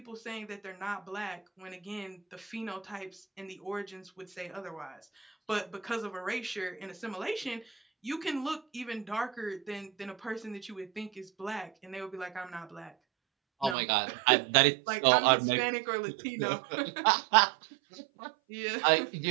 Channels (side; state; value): left; drops out; at 13.8 s